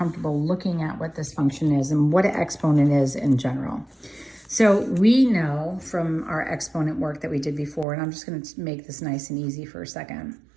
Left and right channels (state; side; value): drops out; left; at 7.9 s